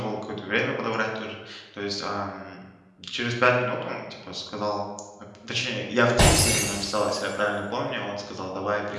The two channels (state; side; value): identical; both; correlation 1.00